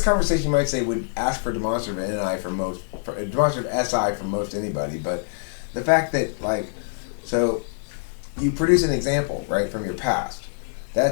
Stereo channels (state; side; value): silent; right; digital silence